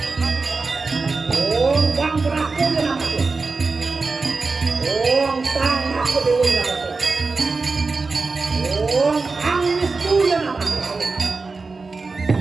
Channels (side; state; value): left; quieter; 4.1 dB